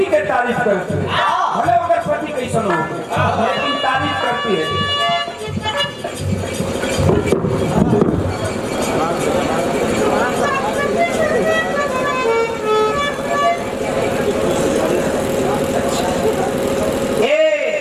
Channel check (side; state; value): both; identical; correlation 1.00